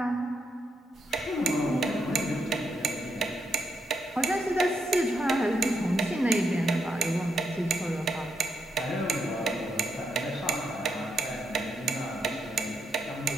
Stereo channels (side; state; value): both; normal; correlation 0.81